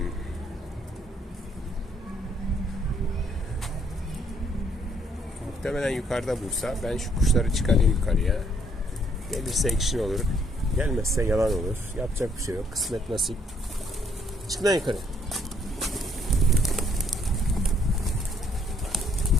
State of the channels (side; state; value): both; normal; correlation 0.67